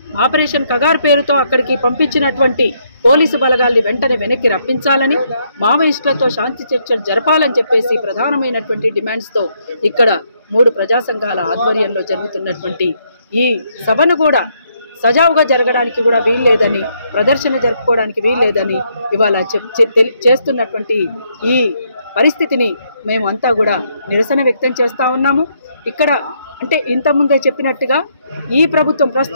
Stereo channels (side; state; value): both; inverted; correlation -0.74